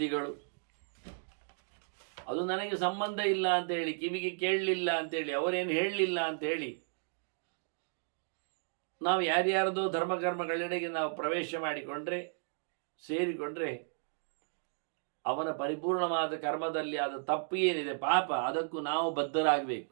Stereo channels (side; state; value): left; silent; digital silence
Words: ಅದು ನನಗೆ ಸಂಬಂಧ ಇಲ್ಲ ಅಂತ ಹೇಳಿ, ಕಿವಿಗೆ ಕೇಳಲಿಲ್ಲ ಅಂತೇಳಿ, ಅವರೇನು ಹೇಳಲಿಲ್ಲ ಅಂತ ಹೇಳಿ ನಾವು ಯಾರ್ಯಾರದೋ ಧರ್ಮಕರ್ಮಗಳೆಡೆಗೆ ನಾವು ಪ್ರವೇಶ ಮಾಡಿಕೊಂಡ್ರೆ, ಸೇರಿಕೊಂಡ್ರೆ, ಅವನ ಪರಿಪೂರ್ಣವಾದ ಕರ್ಮದಲ್ಲಿ ಆದ ತಪ್ಪು ಏನಿದೆ, ಪಾಪ, ಅದಕ್ಕೂ ನಾವು ಬದ್ಧರಾಗಬೇಕು.